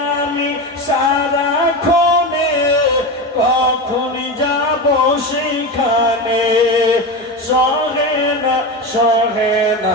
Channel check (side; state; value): both; normal; correlation 0.21